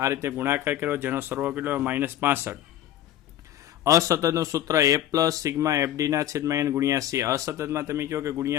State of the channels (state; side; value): quieter; right; 12.3 dB